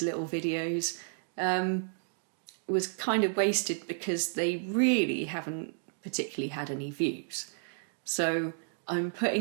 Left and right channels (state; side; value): silent; left; digital silence